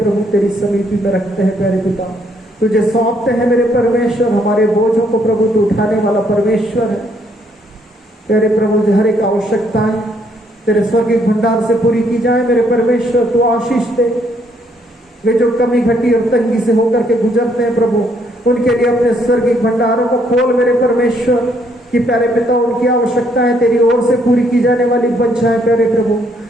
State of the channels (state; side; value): normal; both; correlation 0.70